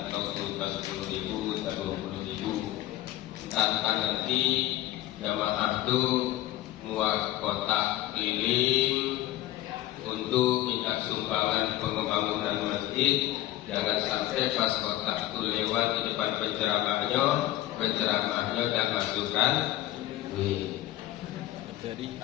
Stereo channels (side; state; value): right; quieter; 14.8 dB